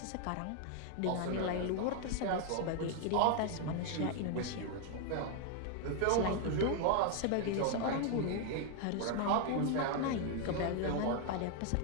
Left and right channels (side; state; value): both; different; correlation 0.00